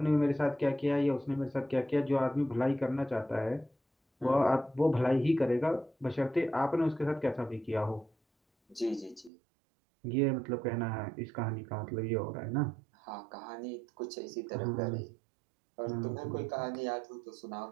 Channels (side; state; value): left; drops out; at 9.3 s